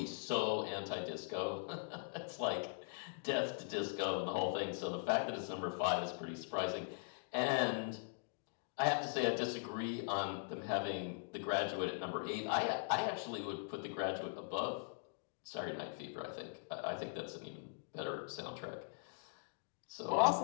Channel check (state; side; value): silent; right; digital silence